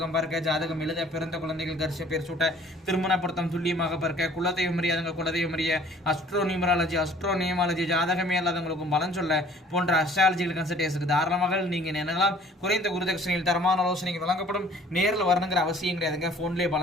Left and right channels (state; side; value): normal; both; correlation 0.53